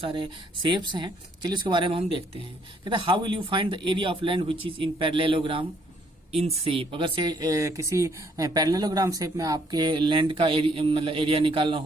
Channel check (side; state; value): both; normal; correlation 0.67